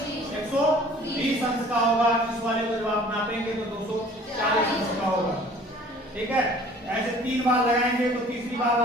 120 अंश का होगा, इस वाले को जब आप नापेंगे तो 240 अंश का होगा। ठीक है, ऐसे 3 बार लगाएंगे तो तीसरी बार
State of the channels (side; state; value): both; normal; correlation 0.51